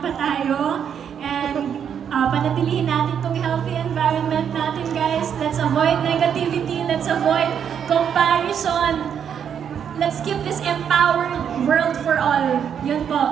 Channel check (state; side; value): quieter; left; 8.1 dB